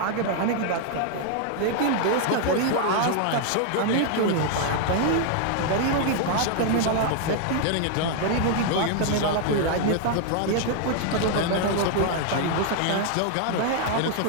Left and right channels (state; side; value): different; both; correlation 0.00